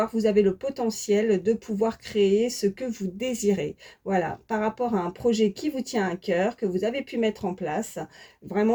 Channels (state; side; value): identical; both; correlation 1.00